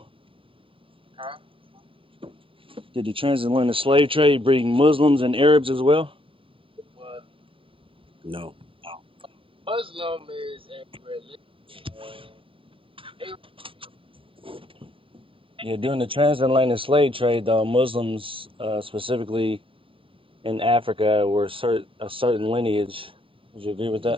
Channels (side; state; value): left; late; 0.25 ms